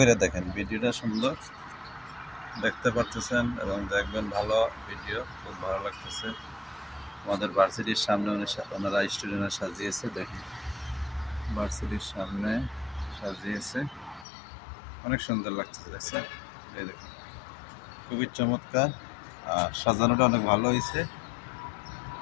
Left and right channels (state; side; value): drops out; right; at 14.2 s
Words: দেখেন, ভিডিওটা সুন্দর দেখতে পারতেছেন এবং দেখবেন, ভালো ভিডিও, খুব ভালো লাগতেছে। আমাদের ভার্সিটির সামনে ওনারা স্টুডেন্টরা সাজিয়েছে, দেখেন ভার্সিটির সামনে সাজিয়েছে, অনেক সুন্দর লাগতেছে। দেখছেন, এই দেখুন খুবই চমৎকার, আর সাজানোটা অনেক ভালো হয়েছে।